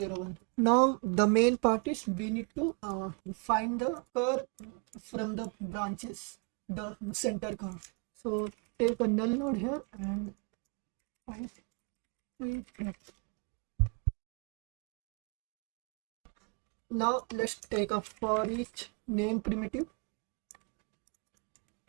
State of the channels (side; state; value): left; quieter; 34.5 dB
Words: Now the main part is we need to find the curve from the branches, the center curve. So take a null node here and find it. Now let's take a for each name primitive,